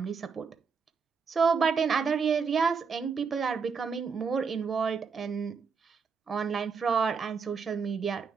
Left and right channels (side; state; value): left; quieter; 5.6 dB